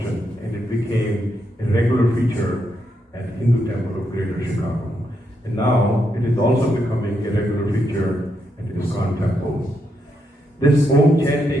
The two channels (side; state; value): both; normal; correlation 0.80